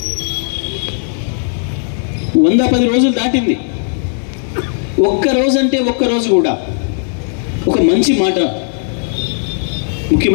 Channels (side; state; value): right; silent; digital silence